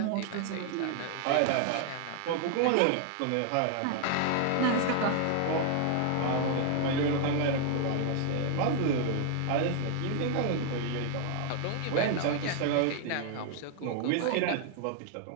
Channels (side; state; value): both; different; correlation 0.00